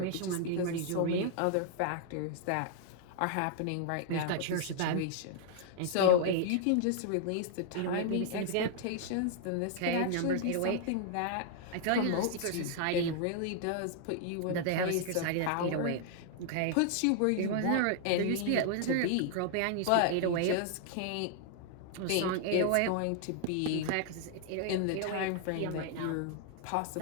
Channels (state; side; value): different; both; correlation 0.00